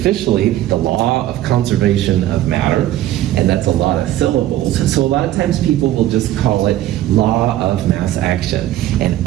the law of conservation of matter, and that's a lot of syllables. So a lot of times people will just call it law of mass action,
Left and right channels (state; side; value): quieter; left; 13.8 dB